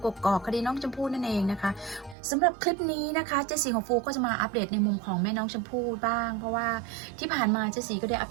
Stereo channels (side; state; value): left; drops out; at 2.1 s